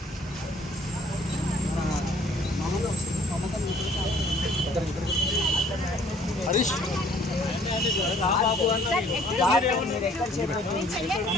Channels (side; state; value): both; normal; correlation 0.57